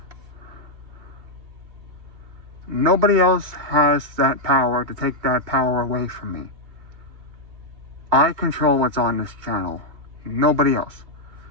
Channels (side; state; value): left; late; 2.7 ms